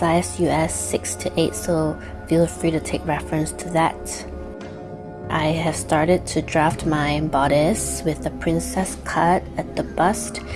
US 6 to 8, so feel free to take reference to that. I have started to draft my bodice with the princess cut at the bust,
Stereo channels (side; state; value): both; identical; correlation 1.00